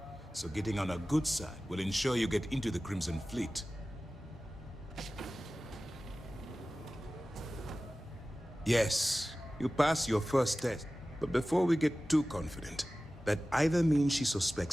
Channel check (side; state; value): both; normal; correlation 0.96